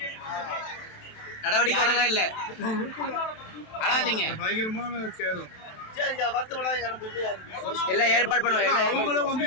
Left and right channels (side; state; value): right; late; 27 ms